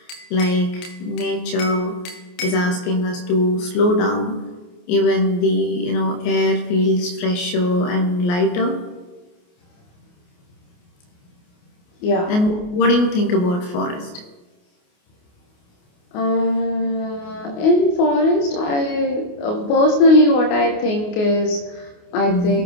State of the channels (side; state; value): right; late; 28 ms